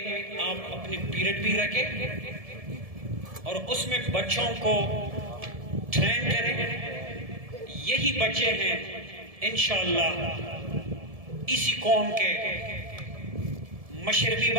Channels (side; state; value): left; late; 1.7 ms